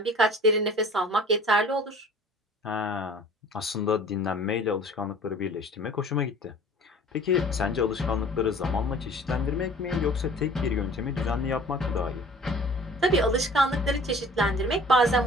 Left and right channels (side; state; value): both; normal; correlation 0.48